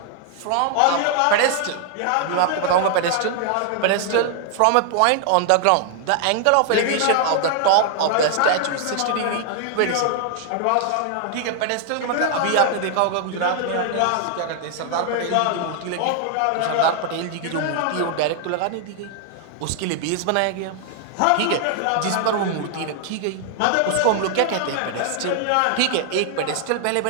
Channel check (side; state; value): both; different; correlation 0.00